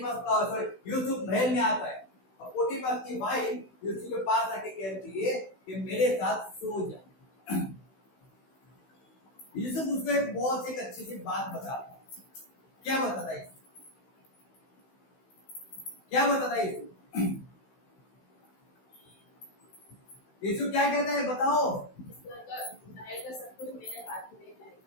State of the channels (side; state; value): right; late; 16 ms